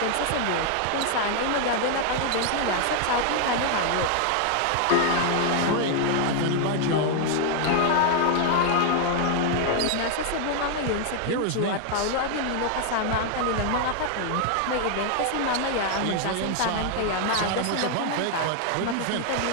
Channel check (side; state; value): both; different; correlation 0.00